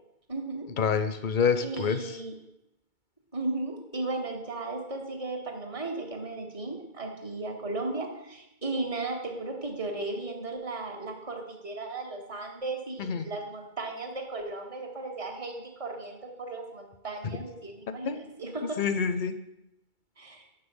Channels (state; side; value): late; right; 2.3 ms